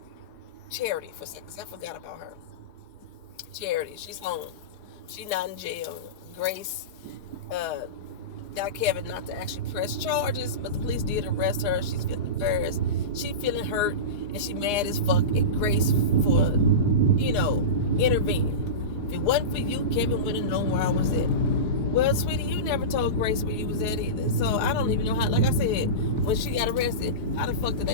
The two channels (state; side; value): late; right; 4.9 ms